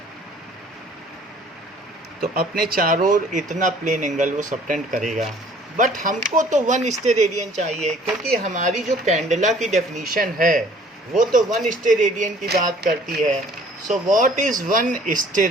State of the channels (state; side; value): normal; both; correlation 0.54